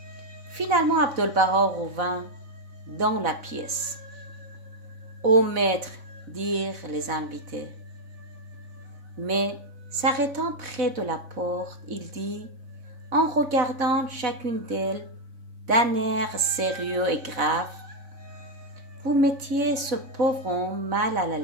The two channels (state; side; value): late; left; 3.6 ms